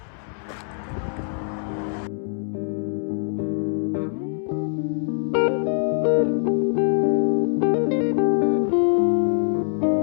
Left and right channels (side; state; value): right; silent; 63 dB below the other